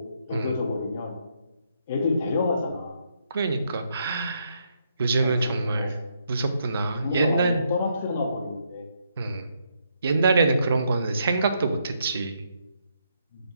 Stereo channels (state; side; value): inverted; both; correlation -0.76